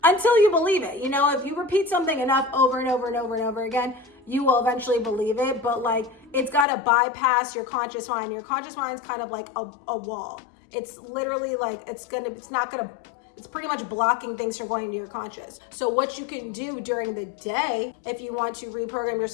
until you believe it. You know, if you repeat something enough over and over and over and over again, you will eventually believe it. But like, it's got to bypass your conscious mind. Your conscious mind's kind of like a wall. It's literally like, it's pretty much blocking things from going into your conscious. So what you can do during the day, if you want to reprogram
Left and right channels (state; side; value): drops out; right; at 6.7 s